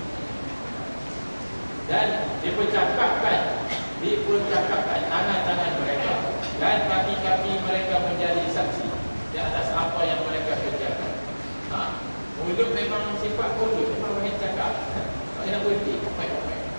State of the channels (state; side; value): inverted; both; correlation -1.00